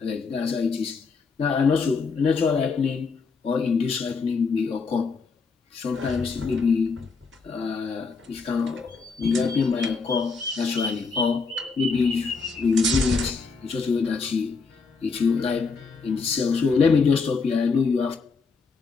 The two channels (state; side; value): quieter; right; 4.8 dB